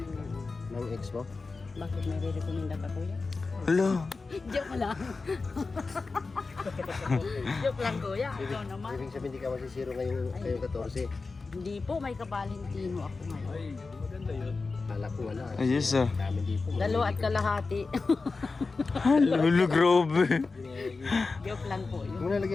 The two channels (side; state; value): right; quieter; 4.0 dB